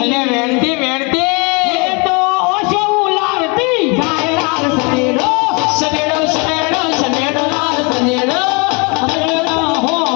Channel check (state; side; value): quieter; right; 31.4 dB